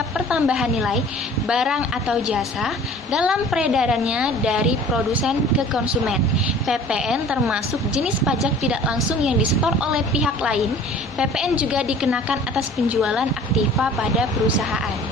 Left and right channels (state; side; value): normal; both; correlation 0.47